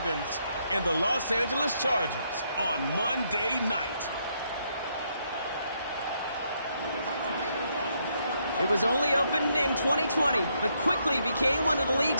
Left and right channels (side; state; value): both; inverted; correlation -0.75